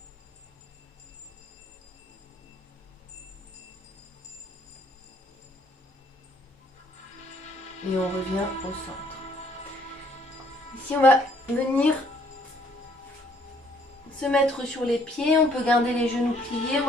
Et on revient au centre. Ici, on va venir se mettre sur les pieds. On peut garder les genoux pliés. On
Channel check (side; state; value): both; normal; correlation 0.64